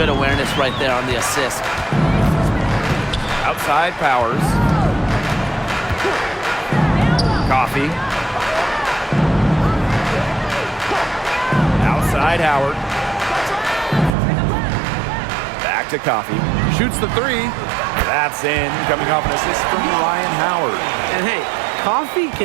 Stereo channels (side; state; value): left; drops out; at 14.1 s